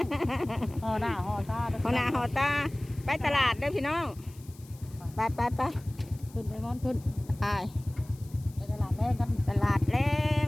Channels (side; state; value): left; noise; hiss, 24 dB below the sound